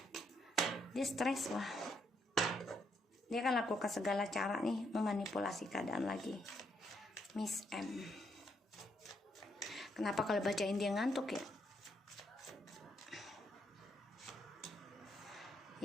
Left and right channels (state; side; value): normal; both; correlation 0.75